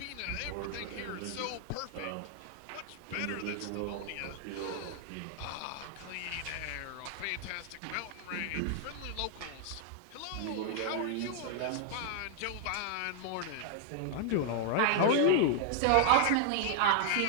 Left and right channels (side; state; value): both; different; correlation 0.00